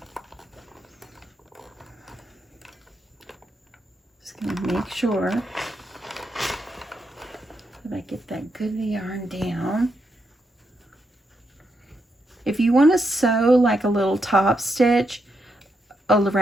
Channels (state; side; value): normal; both; correlation 0.82